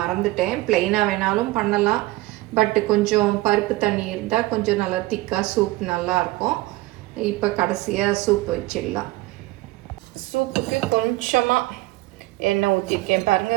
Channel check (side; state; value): left; quieter; 19.3 dB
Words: ப்ளைனாக வேணாலும் பண்ணலாம், பட்டு கொஞ்சம் பருப்பு தண்ணி இருந்தால் கொஞ்சம் நல்லா திக்காக சூப் நல்லாயிருக்கும். இப்போ கடைசியாக சூப் வச்சிடலாம். சூப்புக்கு கொஞ்சமாக எண்ணெய் ஊற்றிருக்கேன்